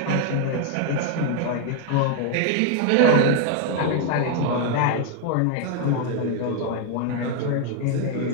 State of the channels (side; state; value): both; different; correlation 0.00